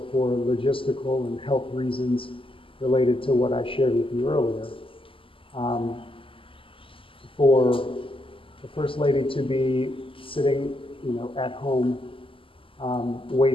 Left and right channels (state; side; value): late; right; 0.25 ms